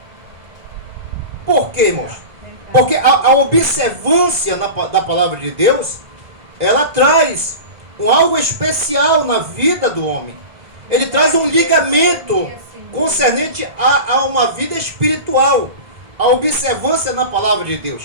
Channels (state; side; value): late; left; 1.7 ms